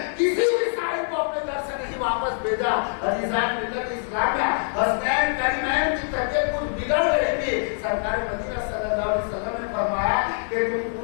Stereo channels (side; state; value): right; silent; digital silence